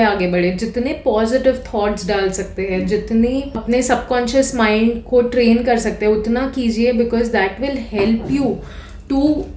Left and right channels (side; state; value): both; identical; correlation 1.00